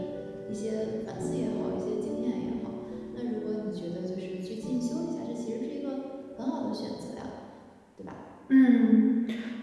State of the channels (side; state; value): both; identical; correlation 1.00